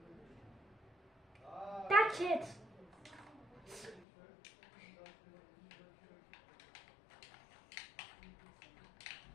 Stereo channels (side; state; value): right; drops out; at 4.0 s